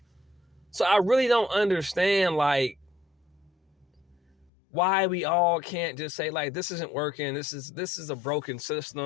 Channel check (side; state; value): right; drops out; at 4.5 s